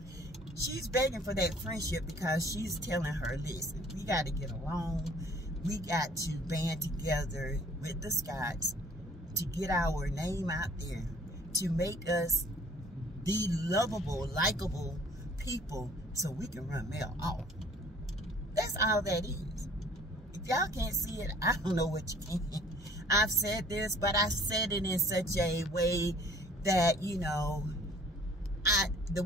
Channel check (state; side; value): normal; both; correlation 0.55